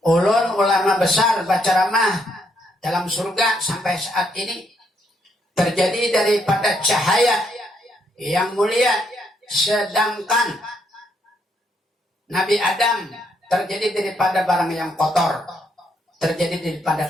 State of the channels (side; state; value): both; normal; correlation 0.74